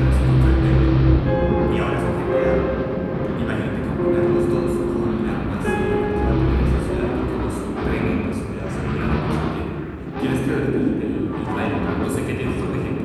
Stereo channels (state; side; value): identical; both; correlation 1.00